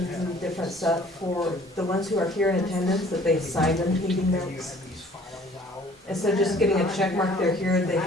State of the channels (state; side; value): normal; both; correlation 0.53